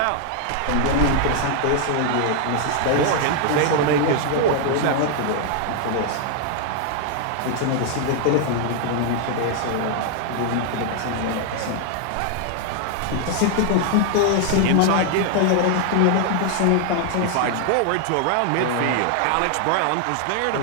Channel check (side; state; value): both; different; correlation 0.00